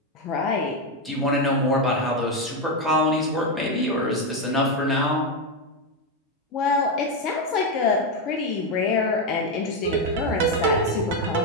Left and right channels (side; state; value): both; normal; correlation 0.06